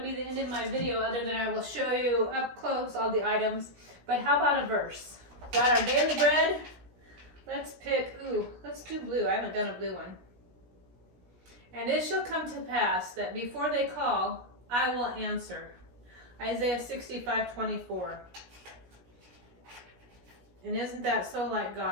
be the end of my video, other than I will show you up close all the items. But how about a verse? Got our daily bread. Let's pick, let's do blue. I haven't done a blue one. And it shall come to pass that before they call, I will answer. Isaiah 65:24. And isn't that so like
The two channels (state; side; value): late; left; 17 ms